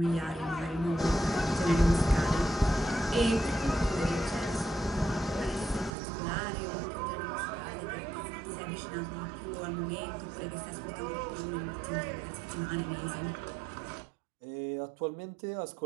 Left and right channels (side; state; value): left; drops out; at 5.9 s